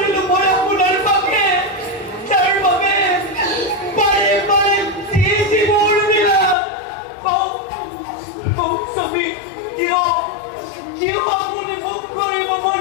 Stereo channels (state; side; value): drops out; right; at 6.6 s